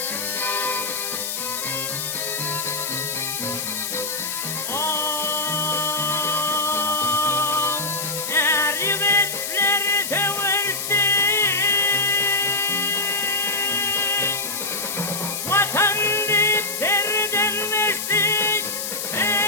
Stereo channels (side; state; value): left; noise; hiss, 4 dB below the sound